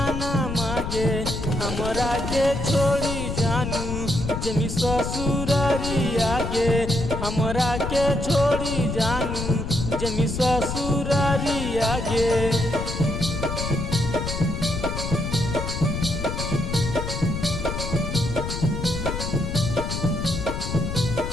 मागे हमरा के छोड़ी जानू जमी ससुरारी आगे, हमरा के छोड़ी जानू जमी ससुरारी आगे।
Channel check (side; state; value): left; noise; rumble, 4 dB below the sound